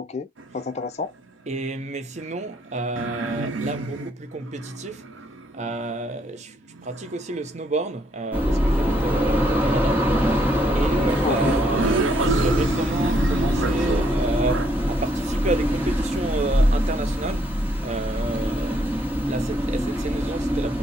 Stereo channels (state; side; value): normal; both; correlation 0.70